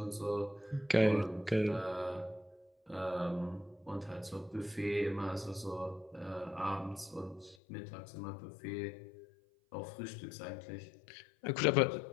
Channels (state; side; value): drops out; right; at 7.6 s